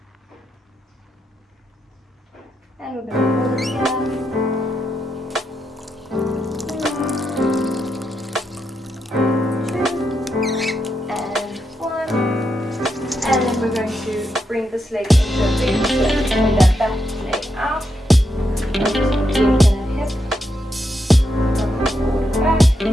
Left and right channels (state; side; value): normal; both; correlation 0.82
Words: And we're going to roll it here. We're going to bring this leg into a big split and that back leg out. Hip. Forward back.